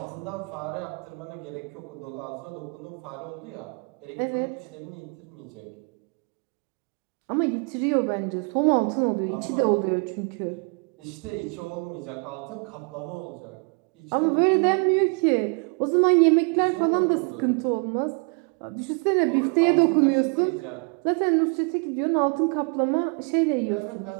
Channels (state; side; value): quieter; left; 36.2 dB